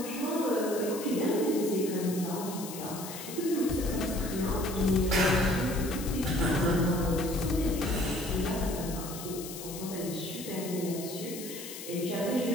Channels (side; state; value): left; noise; hiss, 11 dB below the sound